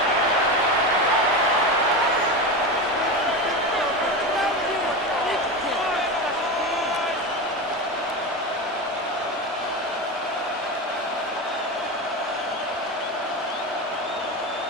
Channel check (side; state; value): both; normal; correlation 0.21